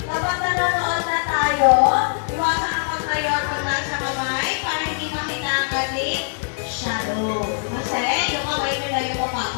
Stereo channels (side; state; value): right; silent; digital silence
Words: kapag nanonood na tayo, iwasan ang pagtayo at paglaan sa kamay para hindi makita ang ating shadow. Kasi yung kamay nila yung